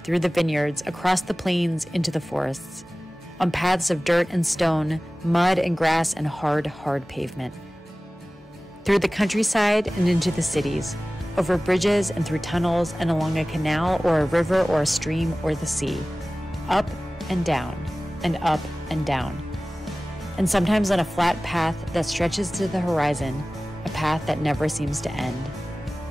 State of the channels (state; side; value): normal; both; correlation 0.97